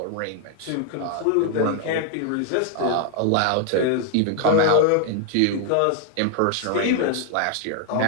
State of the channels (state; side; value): different; both; correlation 0.00